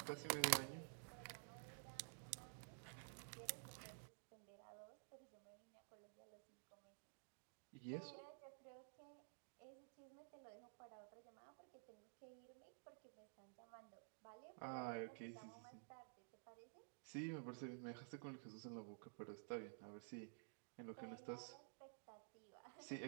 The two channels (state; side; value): silent; left; digital silence